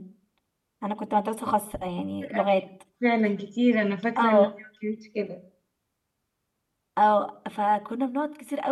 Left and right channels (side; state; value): both; identical; correlation 1.00